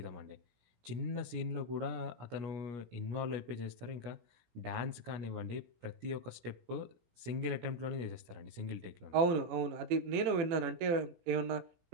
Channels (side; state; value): left; late; 17 ms